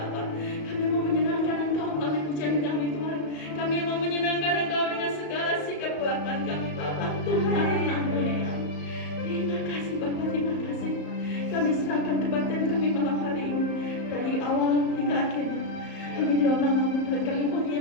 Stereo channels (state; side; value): late; right; 35 ms